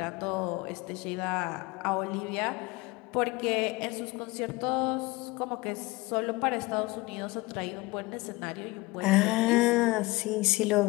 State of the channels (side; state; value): right; quieter; 22.2 dB